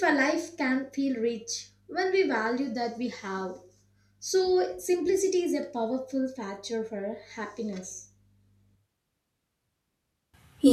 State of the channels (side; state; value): both; identical; correlation 1.00